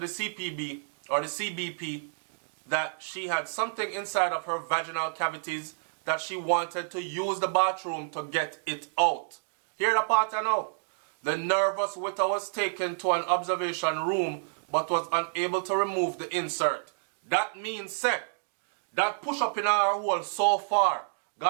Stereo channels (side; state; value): left; silent; digital silence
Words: CPB or the CBP that she had something inside of her vaginal cavities that she wanted to use the bathroom to get it out. Hear the part I know. The nervous Witter was taken to an observation room but was unable to remove the insert. That means, say, that push up in our hole so far,